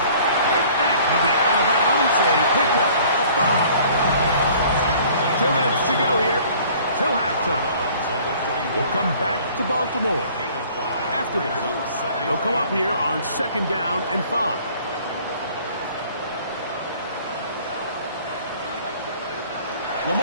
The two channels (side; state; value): both; inverted; correlation -0.53